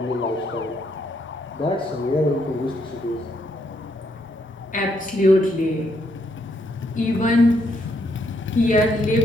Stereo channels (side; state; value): both; normal; correlation 0.74